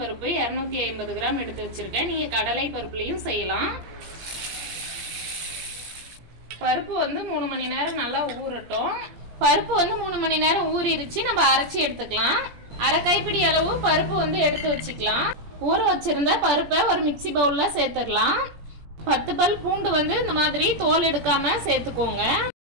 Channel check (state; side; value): late; left; 17 ms